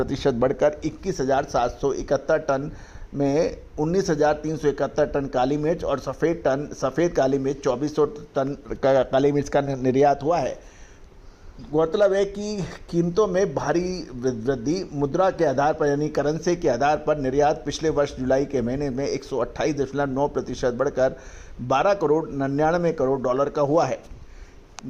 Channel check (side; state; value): both; identical; correlation 1.00